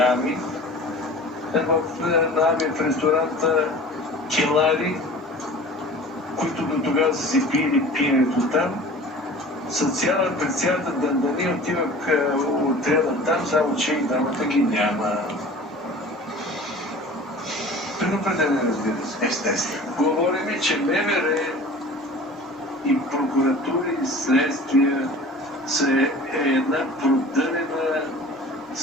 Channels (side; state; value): both; normal; correlation 0.42